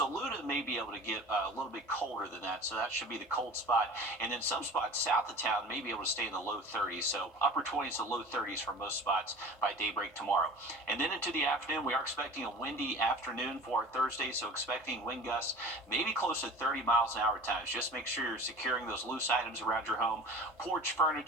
may be able to get a little bit colder than that, so that should be the cold spot. And then some spots south of town may be able to stay in the low 30s, so upper 20s to low 30s for most spots by daybreak tomorrow. And then into the afternoon, we are expecting a windy afternoon for our Thursday, so expecting wind gusts maybe close to 30 miles an hour at times. Just make sure you're securing those loose items around your home. Porch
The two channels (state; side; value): normal; both; correlation 0.39